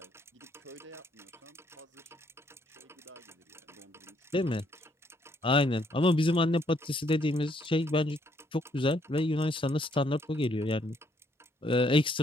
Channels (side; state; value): both; normal; correlation 0.70